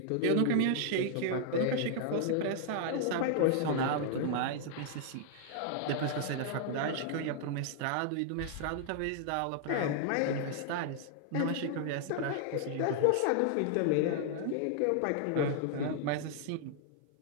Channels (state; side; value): different; both; correlation -0.01